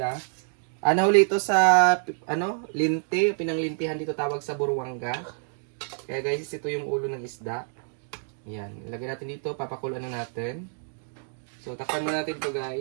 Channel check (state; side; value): silent; left; 60 dB below the other